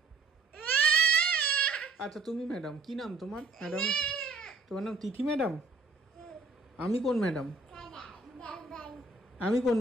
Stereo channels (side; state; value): left; quieter; 3.6 dB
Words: আচ্ছা তুমি ম্যাডাম, কি নাম তোমার? ম্যাডাম তোমার নাম তিথি ম্যাডাম? আমি কোন ম্যাডাম? আমি কোন